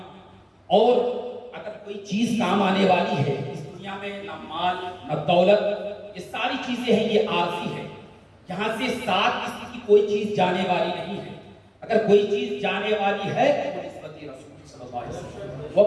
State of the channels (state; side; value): identical; both; correlation 1.00